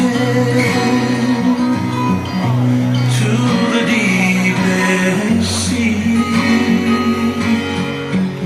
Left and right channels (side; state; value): both; identical; correlation 1.00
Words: to the deepest sea.